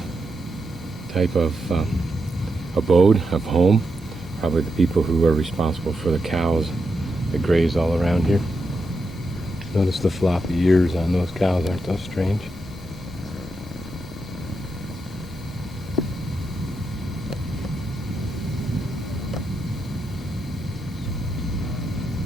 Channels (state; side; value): normal; both; correlation 0.85